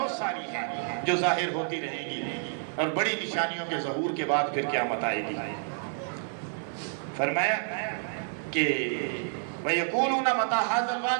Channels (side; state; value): left; silent; 55 dB below the other